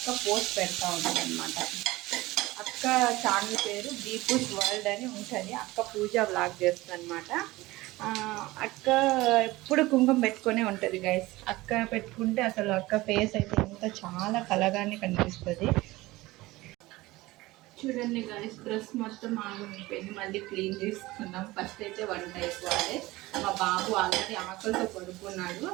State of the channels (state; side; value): quieter; left; 19.5 dB